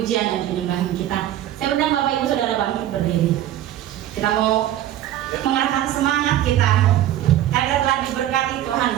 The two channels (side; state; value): left; quieter; 12.6 dB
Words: dan penyembahan kita. Saya undang Bapak Ibu Saudara bangkit berdiri. Kita mau mengarahkan semangat kita karena telah diberkati Tuhan